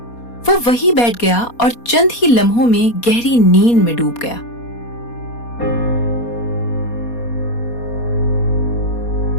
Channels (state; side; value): late; right; 4.2 ms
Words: वो वहीं बैठ गया और चंद ही लम्हों में गहरी नींद में डूब गया।